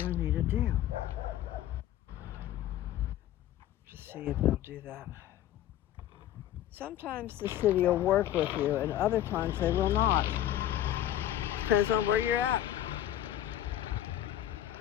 I need to do. Just see if they'll do that. Sometimes the city will work with you, and other times they will not. Depends on where you're at.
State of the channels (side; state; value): right; quieter; 12.2 dB